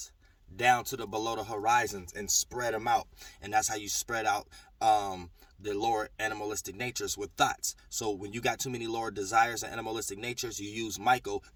down to the below the horizons and spread them out. And that's how you spread out the lower animalistic natures with thoughts. So when you got too many lower desires and animalistic natures, you use Michael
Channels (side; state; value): both; identical; correlation 1.00